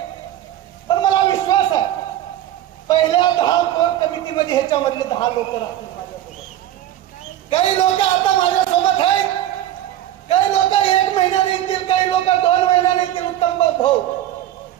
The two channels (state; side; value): quieter; left; 12.6 dB